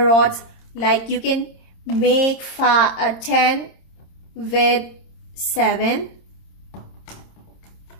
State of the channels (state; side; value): late; right; 26 ms